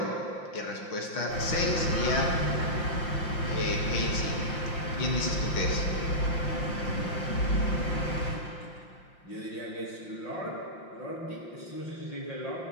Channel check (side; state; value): right; late; 5.7 ms